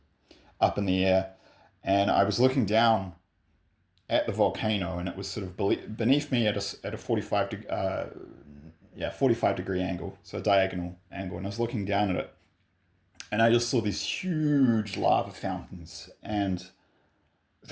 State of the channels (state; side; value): identical; both; correlation 1.00